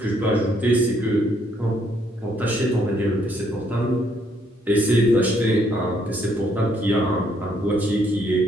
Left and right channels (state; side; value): normal; both; correlation 0.70